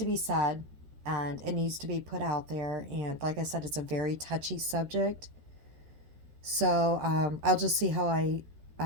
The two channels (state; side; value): late; left; 13 ms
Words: be said and it needs to be put out there. And like I said, it's a very touchy subject. So I'll just see how I